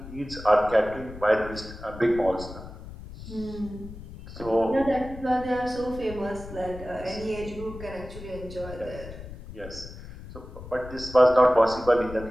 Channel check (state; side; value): noise; left; rumble, 13 dB below the sound